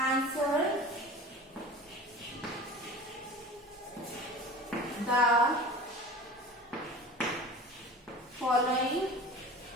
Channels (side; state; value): both; normal; correlation 0.37